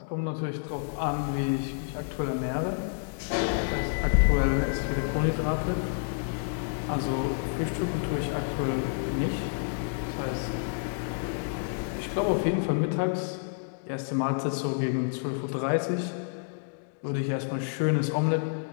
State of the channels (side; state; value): right; silent; digital silence